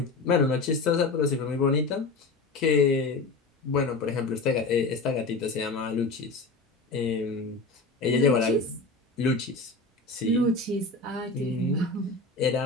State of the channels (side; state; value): right; quieter; 3.5 dB